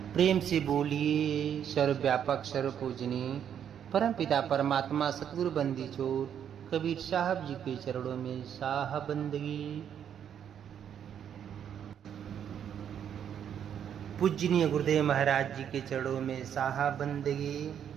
प्रेम से बोलिए सर्वव्यापक सर्वपूजनीय परम पिता परमात्मा सतगुरु बंदी चोर कबीर साहब जी के चरणों में साह बंदगी। पूजनीय गुरुदेव महाराज जी के चरणों में साहा बंदगी।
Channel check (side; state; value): left; quieter; 8.9 dB